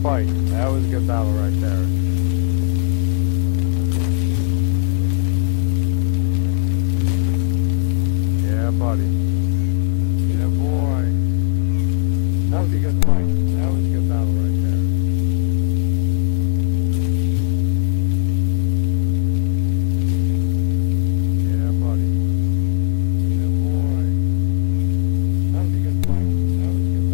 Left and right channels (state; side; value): silent; right; digital silence